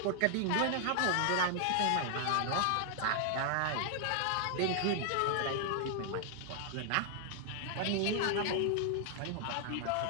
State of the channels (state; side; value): different; both; correlation 0.00